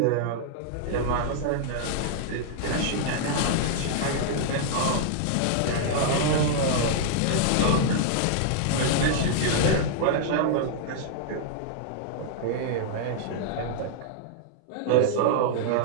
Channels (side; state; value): both; different; correlation -0.01